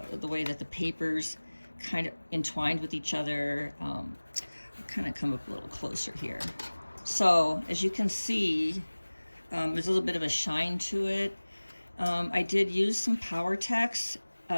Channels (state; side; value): inverted; both; correlation -1.00